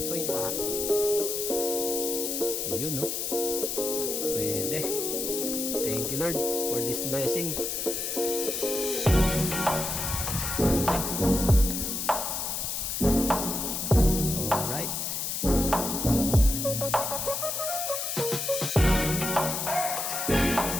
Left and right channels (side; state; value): left; noise; hiss, 2 dB below the sound